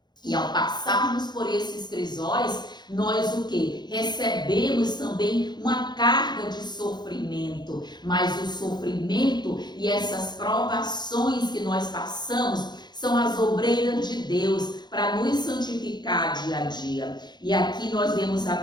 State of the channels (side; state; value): right; late; 0.21 ms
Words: E ao passarmos por esses crisóis, nós o quê? Recebemos também uma carga de sofrimento. Mas o sofrimento e essas provações que nós passamos são as obreiras de Deus para nos santificar dia a dia. E aqui nós vemos a